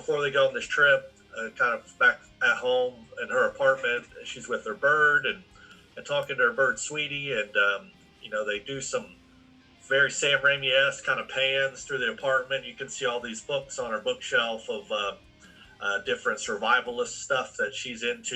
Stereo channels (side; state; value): both; identical; correlation 1.00